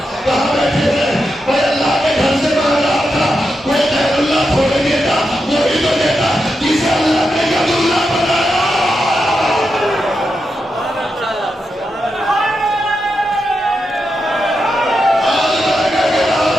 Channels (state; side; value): normal; both; correlation 0.87